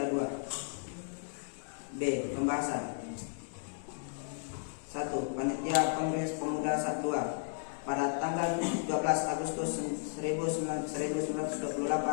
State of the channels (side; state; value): right; silent; digital silence